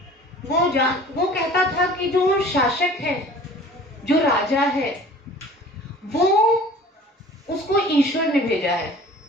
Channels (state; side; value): normal; both; correlation 0.46